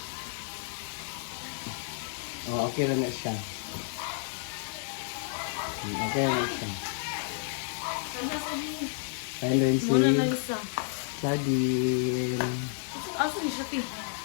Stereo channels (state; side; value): silent; right; 57 dB below the other